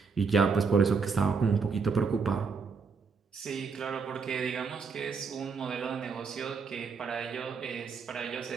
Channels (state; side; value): quieter; left; 5.2 dB